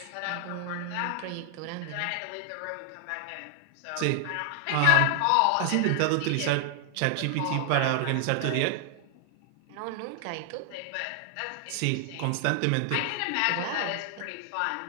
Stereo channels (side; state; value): both; different; correlation 0.00